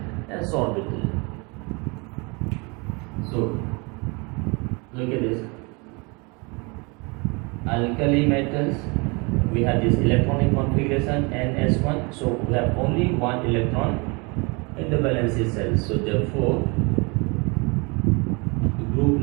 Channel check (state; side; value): quieter; left; 29.5 dB